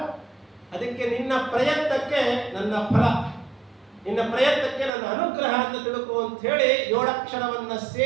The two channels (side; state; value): left; drops out; at 4.9 s